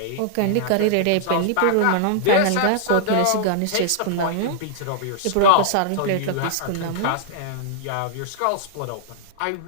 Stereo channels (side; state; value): both; different; correlation -0.01